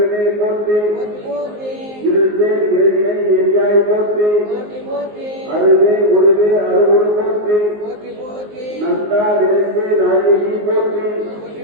போற்றி போற்றி போற்றி. இருள்சேர் இறைவினை எரியாய் போற்றி போற்றி போற்றி. அருவே உருவே அருவுரு போற்றி போற்றி போற்றி. நந்தா விளைந்தே நாயகி போற்றி போற்றி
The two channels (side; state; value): left; late; 19 ms